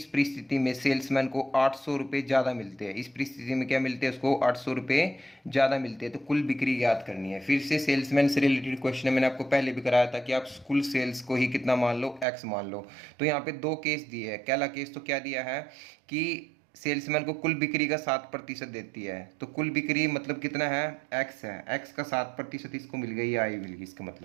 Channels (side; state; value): left; drops out; at 12.2 s